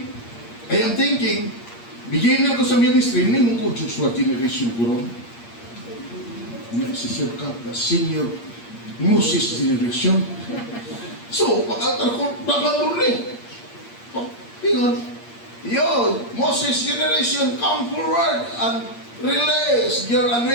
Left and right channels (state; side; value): late; right; 8.6 ms